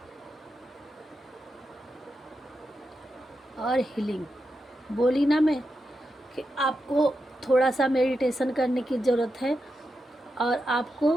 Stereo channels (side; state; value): both; normal; correlation 0.87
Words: और हीलिंग। बोली ना मैं कि आपको थोड़ा सा मेडिटेशन करने की ज़रूरत है। और आपको